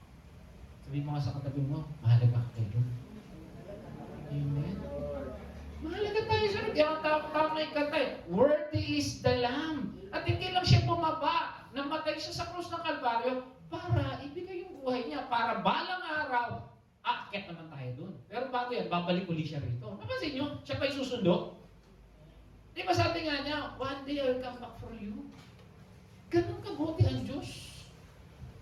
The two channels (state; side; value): identical; both; correlation 1.00